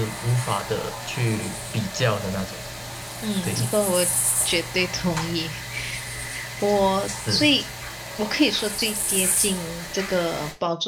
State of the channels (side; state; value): both; identical; correlation 1.00